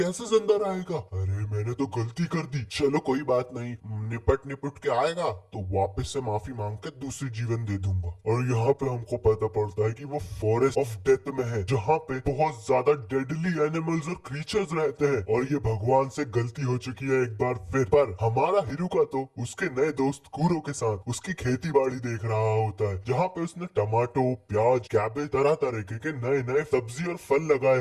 जिंदा रहेगा, अरे मैंने तो गलती कर दी, चलो कोई बात नहीं, निपट निपट के आएगा तो वापस से माफी मांग के दूसरी जीवन दे दूंगा। और यहाँ पे हमको पता पड़ता है कि वो फॉरेस्ट ऑफ डेथ में है, जहाँ पे बहुत ज्यादा डेडली एनिमल्स और क्रीचर्स रहते हैं, और ये भगवान से गलती हो चुकी है एक बार फिर। पर हमारा हिरुका तो उसके नए दोस्त कूरो के साथ उसकी खेती बाड़ी देख रहा होता है, जहाँ पे उसने टमाटो, प्याज, कैबेज, तरह तरह के नए नए सब्जी और फल लगाए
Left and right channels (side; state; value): both; identical; correlation 1.00